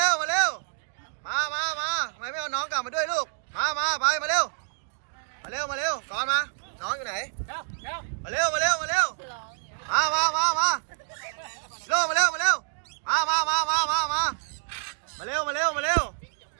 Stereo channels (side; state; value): left; silent; digital silence